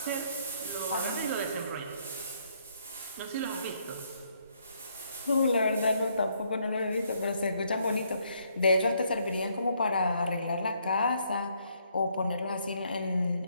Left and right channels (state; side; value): inverted; both; correlation -0.70